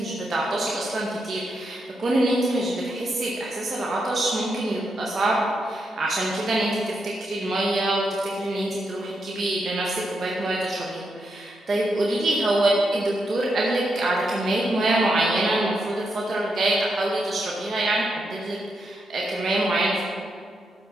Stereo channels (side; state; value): both; normal; correlation 0.83